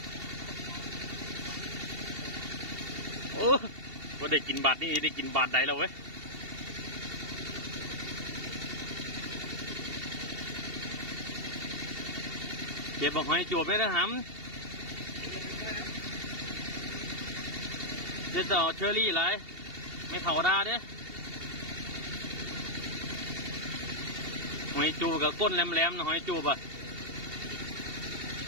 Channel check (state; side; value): late; left; 2.7 ms